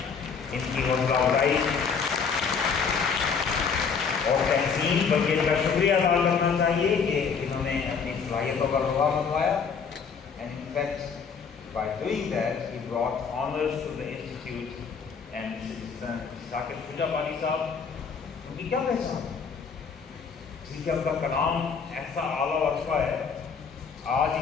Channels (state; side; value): quieter; right; 5.9 dB